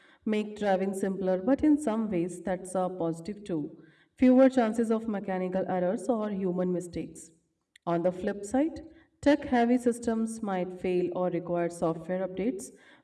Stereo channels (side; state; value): both; identical; correlation 1.00